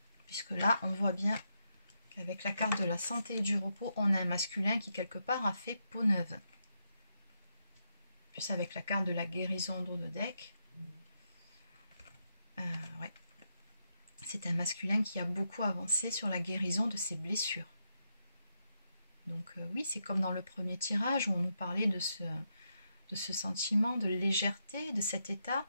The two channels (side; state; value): both; inverted; correlation -0.82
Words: Puisque là, on voit bien qu'avec la carte de la santé et du repos, on a un masculin qui quelque part a fait peau neuve. Plus avec la carte de la guérison en dos de deck. Ouais. C'est un masculin qui a beaucoup avancé sur la guérison de ses blessures. Donc oui, c'est comme dans le premier tirage où on nous parlait de ce sentiment de légèreté, de cet état.